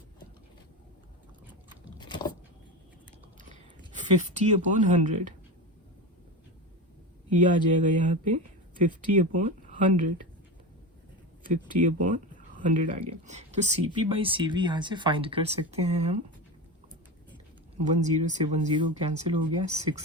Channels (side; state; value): both; normal; correlation 0.22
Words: 50/100, ये आ जाएगा यहाँ पे 50/100, 50/100 आ गया। तो CP/CV यहाँ से फाइंड कर सकते हैं हम। 10 से 10 कैंसिल हो गया,